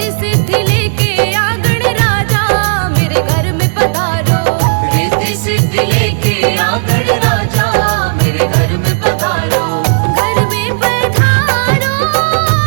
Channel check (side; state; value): left; silent; digital silence